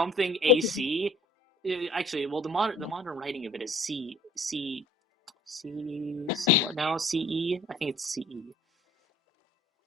AC. Actually, well, the modern writing of it is what now? CE? I think it's CE.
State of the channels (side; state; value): both; normal; correlation 0.52